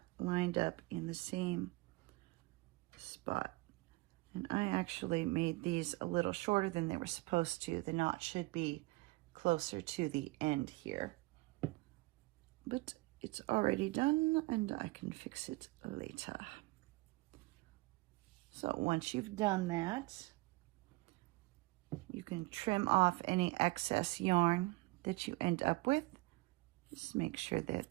lined up in the same spot. And I actually made these a little shorter than they were supposed to. The knot should be closer to the end here. But it's already done and I can fix it later. So once you've done that, you can trim off any excess yarn that you end up with. Just make sure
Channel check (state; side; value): quieter; left; 22.8 dB